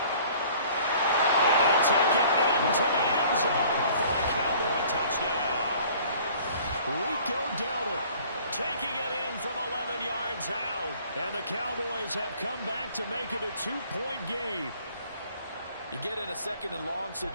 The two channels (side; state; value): both; inverted; correlation -0.52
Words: he'll take it into the end zone for a Cowboy touchdown. Rico Dowdle taking it in from 11 yards out. And the Cowboys have come back to make it a 2-point game. You get in a 2nd and long